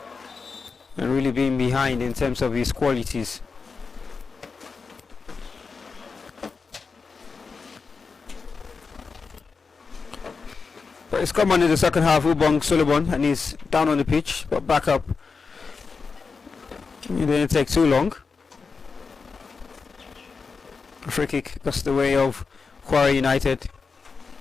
and really being behind in terms of his qualities. But it's come on in the second half, Ubong Solomon, and he's down on the pitch, but back up. It didn't take too long. A free kick goes the way of Kwara United.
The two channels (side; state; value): right; quieter; 4.9 dB